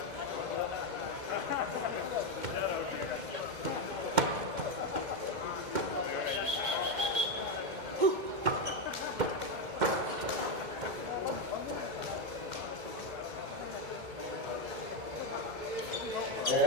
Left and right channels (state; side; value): late; left; 2.2 ms